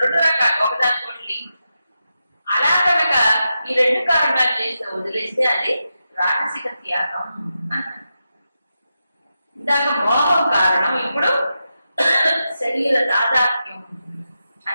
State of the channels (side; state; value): both; inverted; correlation -0.88